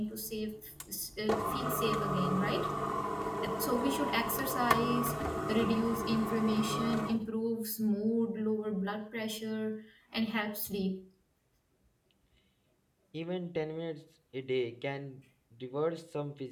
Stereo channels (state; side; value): identical; both; correlation 1.00